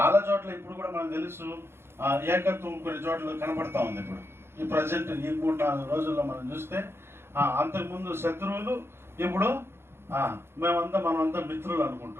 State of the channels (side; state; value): left; late; 0.12 ms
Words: చోట్ల ఇప్పుడు కూడా మనకు తెలుసు ఏకత్వం కొన్ని చోట్ల కనపడతా ఉంది. ఇప్పుడు ఈ ప్రజెంట్ ఈ 3-4 రోజుల్లో మనం చూస్తే అంతకుముందు శత్రువులు, ఇప్పుడు మనమంతా మిత్రులు